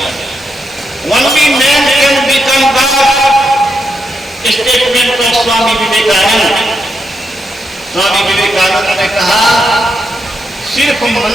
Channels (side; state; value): both; normal; correlation 0.82